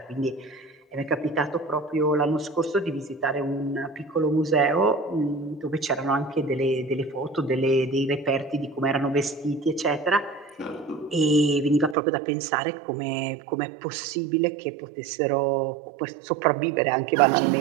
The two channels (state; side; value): drops out; left; at 12.0 s